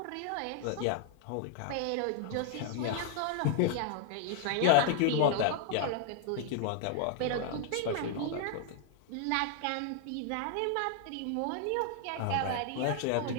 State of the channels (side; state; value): both; different; correlation 0.00